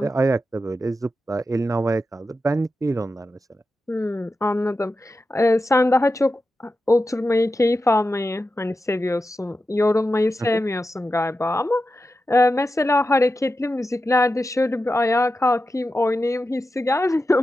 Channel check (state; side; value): normal; both; correlation 0.90